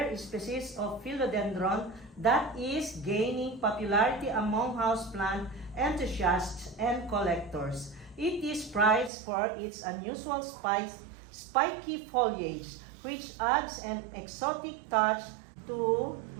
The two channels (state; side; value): drops out; left; at 9.1 s